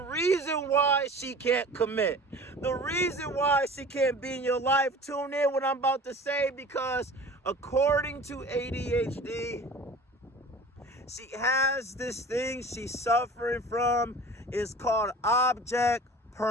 why she can't commit, the reason why she can't be in your life, tune in what I'm about to say, because according to ADHD, she has this thing she's suffering from. It's called object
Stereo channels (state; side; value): normal; both; correlation 0.41